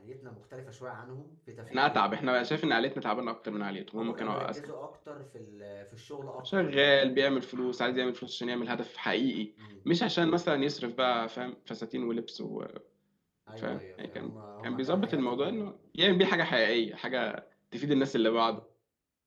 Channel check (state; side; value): identical; both; correlation 1.00